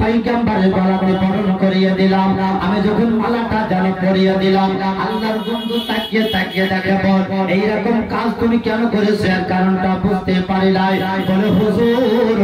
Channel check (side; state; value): both; identical; correlation 1.00